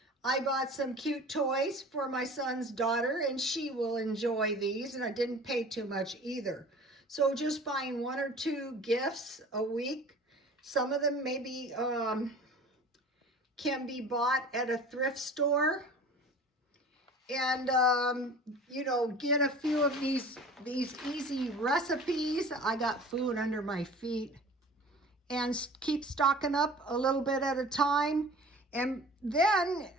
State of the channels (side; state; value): both; normal; correlation 0.42